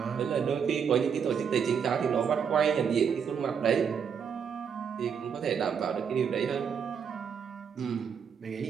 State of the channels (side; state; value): left; quieter; 7.1 dB